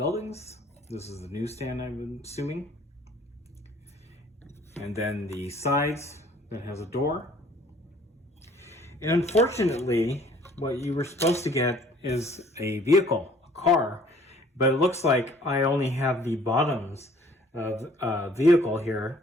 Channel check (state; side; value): normal; both; correlation 0.56